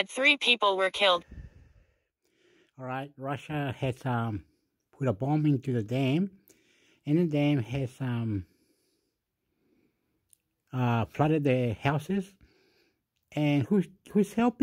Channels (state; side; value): identical; both; correlation 1.00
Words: 3 people were killed. Alright, Russia has put a bomb into the dam, and the dam has flooded the houses. And who's